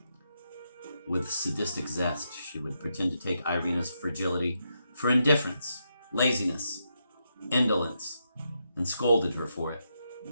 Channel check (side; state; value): both; inverted; correlation -0.83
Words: With sadistic zest, she would pretend to take Irina's fragility for indifference, laziness, indolence, and scolded her for it.